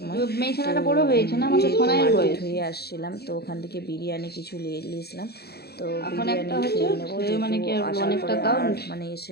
মার্কেট হয়ে আসছিলাম, তো ওখান থেকে বিরিয়ানি কিছু নিয়েছিলাম, তো বিরিয়ানি খেয়ে নেবো, আসার পরে মানে এসে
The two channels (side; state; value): right; late; 0.46 ms